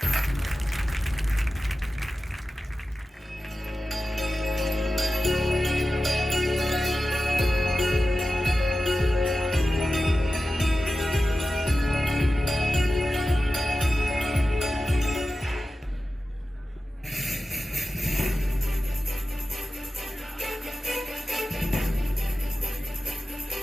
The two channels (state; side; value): normal; both; correlation 0.94